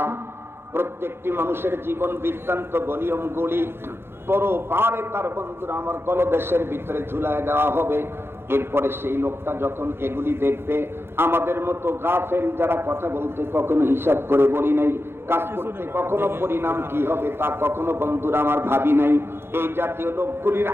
প্রত্যেকটি মানুষের জীবন বৃত্তান্ত নিয়মগুলি পরপারে তার বন্ধুরা আমার গলদেশের ভিতরে ঝুলায় দেওয়া হবে। এরপরে সেই লোকটা যখন এগুলি দেখবে, আমাদের মতো গাফেল যারা কথা বলতে কখনো হিসাব করে বলি নাই, কাজ করতে কখনো পরিণাম কি হবে তা কখনো বন্ধুরা আমার ভাবি নাই, এই জাতীয় লোকগুলির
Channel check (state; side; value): late; left; 0.11 ms